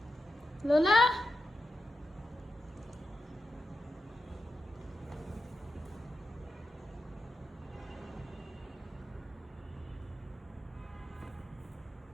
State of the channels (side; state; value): both; normal; correlation 0.89